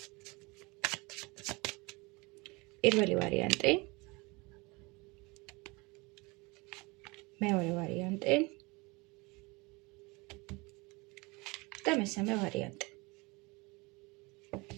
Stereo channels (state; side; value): quieter; left; 25.6 dB